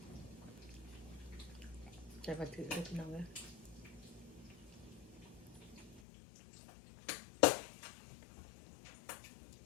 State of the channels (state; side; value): drops out; right; at 6.0 s